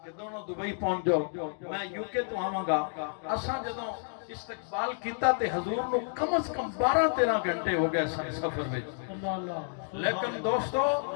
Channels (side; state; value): right; silent; digital silence